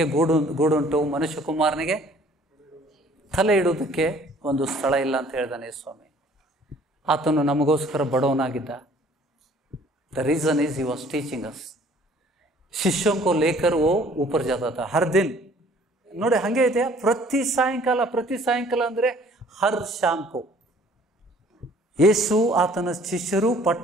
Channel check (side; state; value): both; normal; correlation 0.56